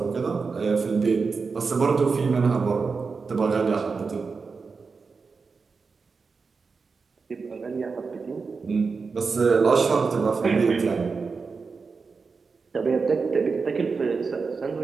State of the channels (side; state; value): left; quieter; 4.8 dB